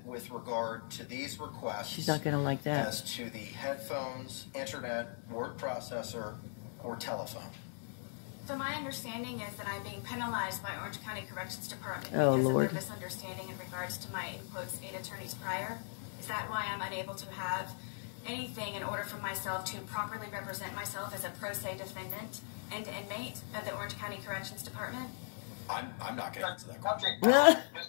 with regard to these requests? She's not going to like that. As to the headphones, internet, word processor, or telephone? So my understanding is that I'm being penalized by Orange County Corrections Department because of their misunderstanding in regards to my, in quotes, 8 attorneys prior. Is that why I'm unable to have anything in order for myself to properly represent myself as a pro se defendant and inmate of the Orange County Corrections Department? I'm not going to answer that question.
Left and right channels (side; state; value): right; silent; digital silence